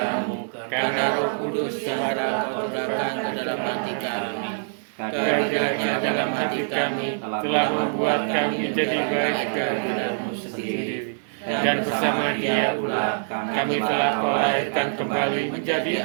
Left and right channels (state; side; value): silent; left; 62 dB below the other